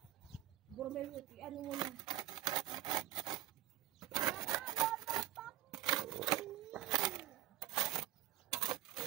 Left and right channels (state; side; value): quieter; left; 14.3 dB